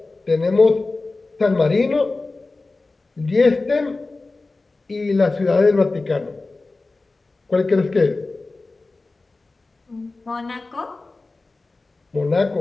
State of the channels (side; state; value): right; quieter; 3.4 dB